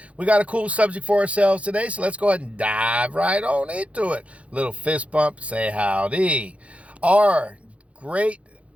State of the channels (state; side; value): late; left; 0.063 ms